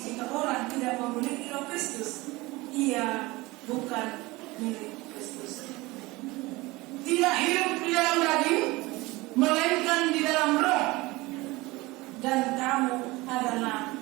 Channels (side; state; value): left; quieter; 21.6 dB